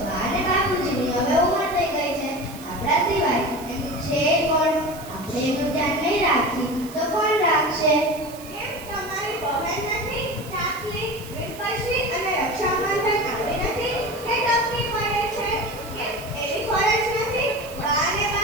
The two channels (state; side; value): noise; right; hiss, 17 dB below the sound